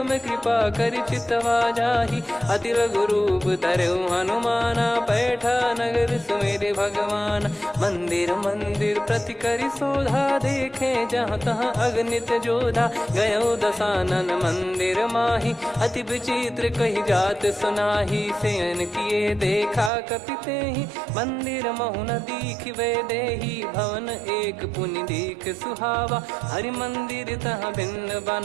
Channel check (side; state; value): left; drops out; at 19.9 s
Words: कृपा करि चितवा जाहि। अति लघु रूप धरऊ हनुमाना, बैठा नगर सुमेरे भगवान। मंदिर मंदिर प्रति करि शोधा, देखे जहाँ तहाँ अगणित जोधा। गयो दशानन मंदिर माही, अति विचित्र कही जात सुनाही। शयन किए देखा कपिते ही, मंदिर महु न दीख वे देही। भवन एक पुनि दीख सुहावा, हरि मंदिर तहाँ भिन्न